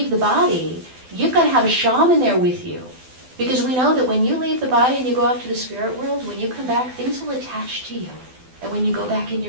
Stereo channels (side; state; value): left; late; 12 ms